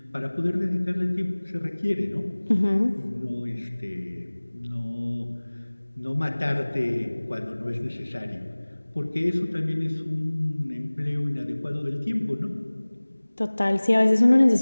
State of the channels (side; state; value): both; inverted; correlation -1.00